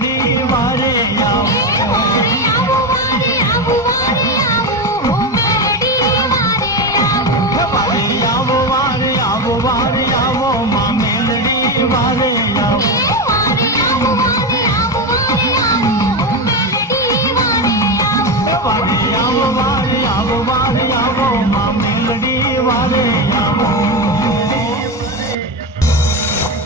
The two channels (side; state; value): both; normal; correlation 0.16